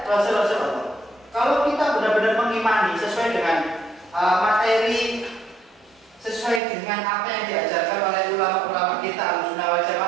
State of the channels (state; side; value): drops out; left; at 6.6 s